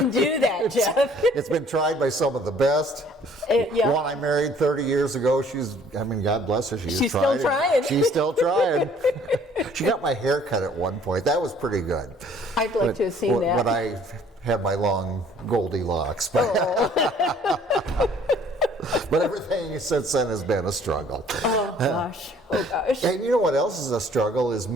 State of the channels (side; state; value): both; normal; correlation 0.57